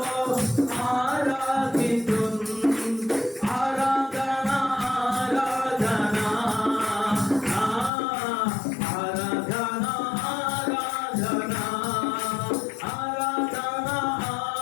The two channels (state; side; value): drops out; right; at 7.9 s